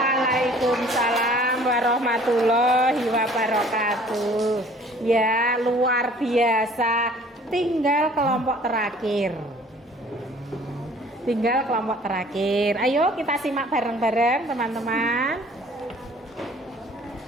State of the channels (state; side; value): normal; both; correlation 0.53